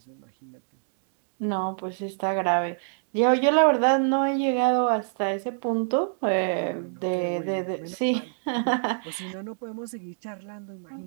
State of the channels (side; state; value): left; silent; digital silence